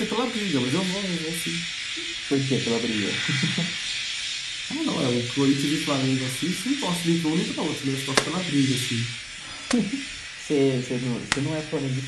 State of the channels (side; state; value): both; identical; correlation 1.00